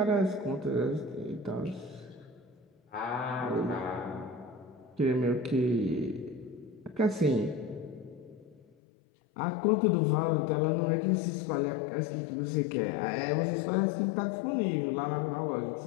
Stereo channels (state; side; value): drops out; right; at 8.6 s